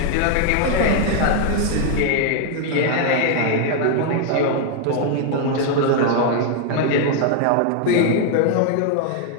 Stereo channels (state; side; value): different; both; correlation 0.00